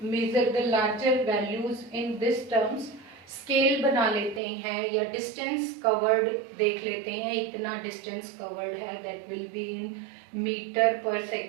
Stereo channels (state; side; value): drops out; left; at 4.4 s